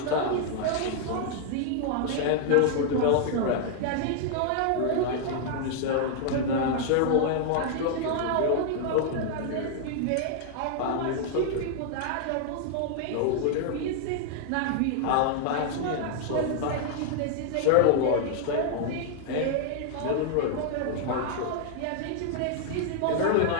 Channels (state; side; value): different; both; correlation -0.01